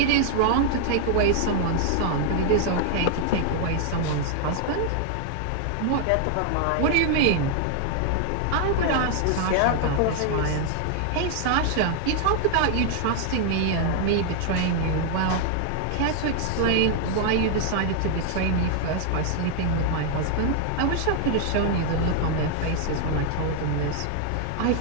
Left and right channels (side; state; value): both; different; correlation 0.00